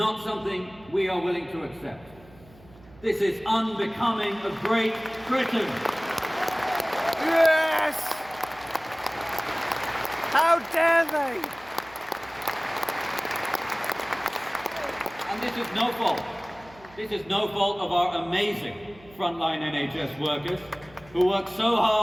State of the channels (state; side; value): noise; right; hum, 24 dB below the sound